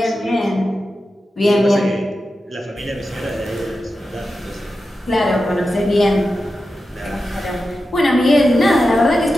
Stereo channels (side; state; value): both; normal; correlation 0.91